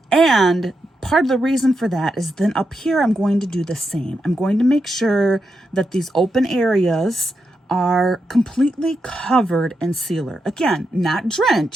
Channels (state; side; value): normal; both; correlation 0.85